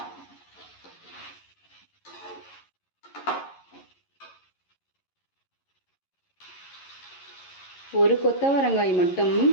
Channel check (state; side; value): late; right; 11 ms